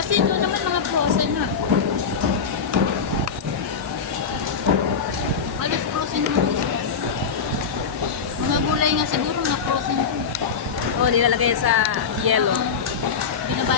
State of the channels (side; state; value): right; quieter; 6.0 dB